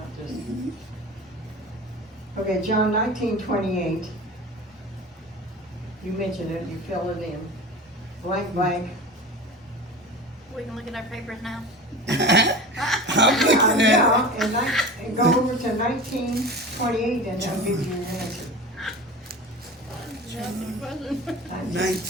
just. Mhm. Okay, John 19:28. You mentioned it, you fill it in. Blank, blank. We can look at our papers now. I'm looking at Yeah, and go over to 19:28 and that'll give you your answer. it.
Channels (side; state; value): both; normal; correlation 0.33